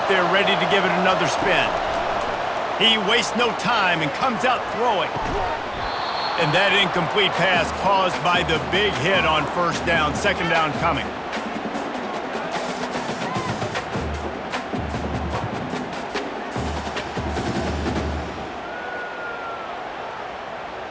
there ready to give it another spin. He wastes no time and comes out throwing. And that incomplete pass caused by the big hit on 1st down. 2nd down coming.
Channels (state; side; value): identical; both; correlation 1.00